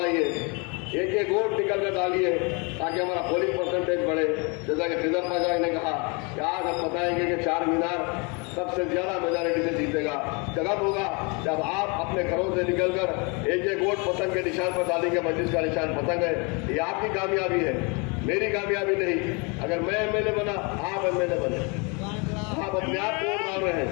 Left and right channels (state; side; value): quieter; right; 31.3 dB